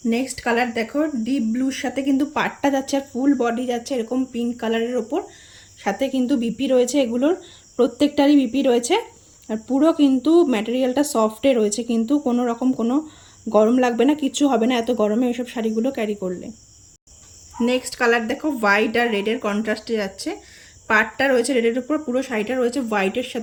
নেক্সট কালার দেখো, ডিপ ব্লুর সাথে কিন্তু পাড়টা যাচ্ছে, আর ফুল বডি যাচ্ছে এরকম পিঙ্ক কালারের ওপর, সাথে কিন্তু বিপি রয়েছে। এগুলোর প্রত্যেকটারই বিপি রয়েছে, আর পুরো কিন্তু ম্যাটেরিয়ালটা সফটে রয়েছে, কিন্তু কোনো রকম কোনো গরম লাগবে না, কিচ্ছু হবে না এত গরমে এইসব শাড়িগুলো ক্যারি করলে। নেক্সট কালার দেখো, হোয়াইট আর রেডের কন্ট্রাস্টে যাচ্ছে, পাড়টা রয়েছে রেডের উপর, পুরো শাড়িটা রয়েছে হোয়াইটের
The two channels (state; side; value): identical; both; correlation 1.00